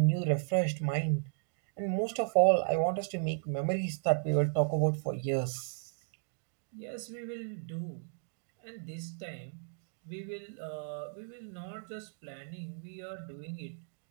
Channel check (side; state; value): left; silent; digital silence